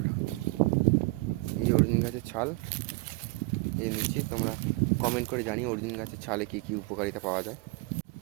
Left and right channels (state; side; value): quieter; left; 24.5 dB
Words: এই যে অর্জুন গাছের ছাল এই নিচ্ছি। তোমরা কমেন্ট করে জানিয়ে অর্জুন গাছের ছালে কী কী উপকারিতা পাওয়া যায়।